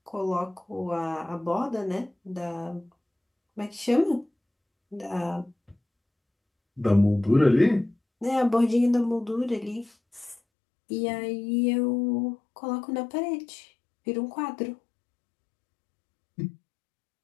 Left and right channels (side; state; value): right; drops out; at 10.4 s